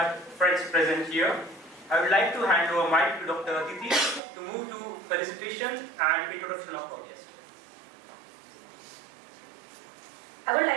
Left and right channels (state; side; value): drops out; left; at 4.2 s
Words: friends present here. I would like to hand over mic to Dr. Aditi to move to felicitation and introduction of our guest. I would